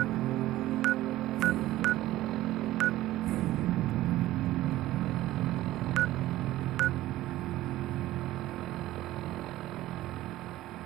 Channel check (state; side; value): quieter; left; 15.6 dB